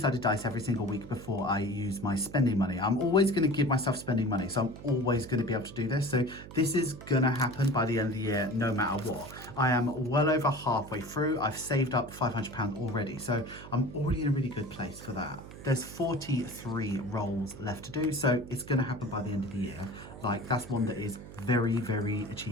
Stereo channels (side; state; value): right; noise; hum, 15 dB below the sound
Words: dice every single week before I use my spending money. I'm always going to give myself spending money, so I'm always going to be able to do this. So this is going to happen by the end of the year, no matter what. I am well over halfway through. I've saved up £500 already, so I'm already in a really good place for that. There's 43 rolls left to do, so it's going to happen by the end of the year. Like, that's one that is very, very